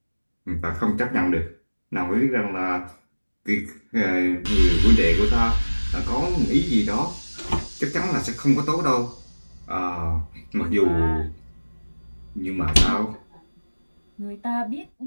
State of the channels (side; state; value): both; inverted; correlation -1.00